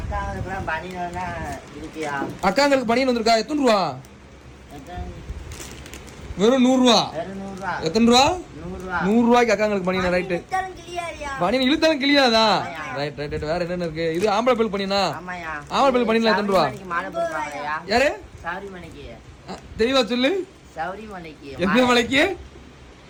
அக்காங்களுக்கு பனியன் வந்திருக்கா எத்தனை ரூபா வெறும் 100 ரூபா எத்தனை ரூபா 100 ரூபாய்க்கு அக்காங்களுக்கு பனியன் ரைட்டு பனியன் இழுத்தாலும் கிளியாதா ரைட் ரைட் ரைட் வேற என்னென்ன இருக்கு இது ஆம்பளை பெல் பனியனா ஆம்பளை பெல் பனியன்ல எத்தனை ரூபா யாரு தெளிவா சொல்லு எந்த மலைக்கு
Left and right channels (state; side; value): identical; both; correlation 1.00